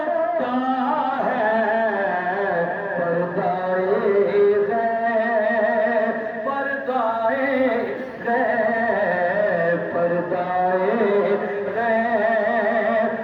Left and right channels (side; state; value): both; identical; correlation 1.00